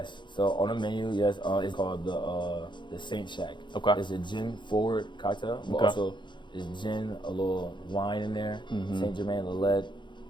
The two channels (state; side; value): late; right; 0.23 ms